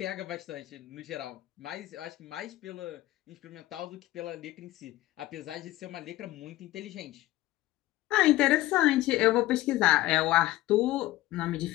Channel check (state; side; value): quieter; right; 16.6 dB